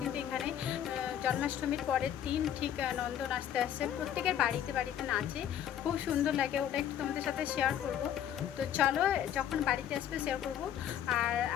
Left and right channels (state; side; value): quieter; right; 10.2 dB